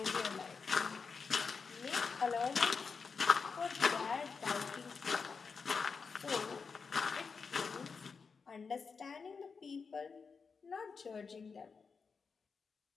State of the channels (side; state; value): right; quieter; 5.2 dB